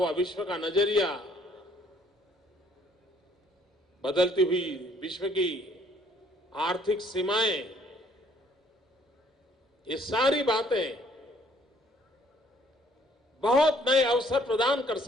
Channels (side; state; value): both; normal; correlation 0.62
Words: विश्व का नजरिया, बदलती हुई विश्व की आर्थिक सीमाएं, ये सारी बातें बहुत नए अवसर प्रदान कर